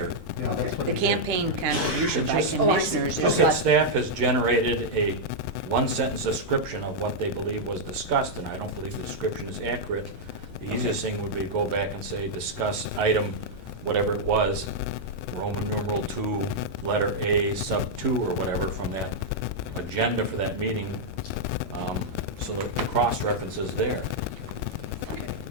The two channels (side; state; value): both; normal; correlation -0.04